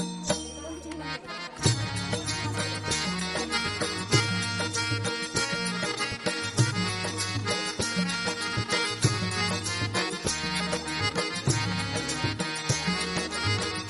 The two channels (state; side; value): identical; both; correlation 1.00